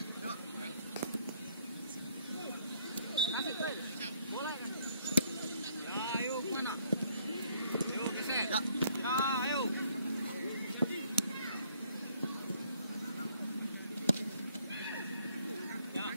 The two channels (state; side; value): inverted; both; correlation -0.65